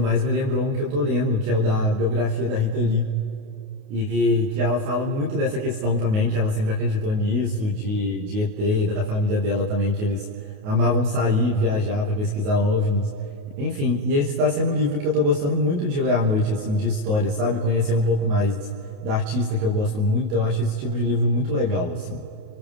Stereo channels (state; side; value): late; left; 28 ms